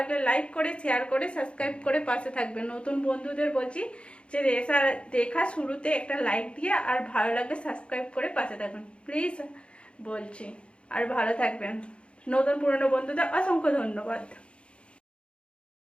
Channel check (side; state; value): right; late; 0.058 ms